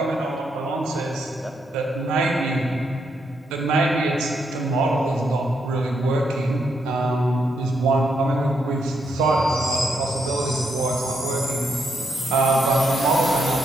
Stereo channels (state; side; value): normal; both; correlation 0.78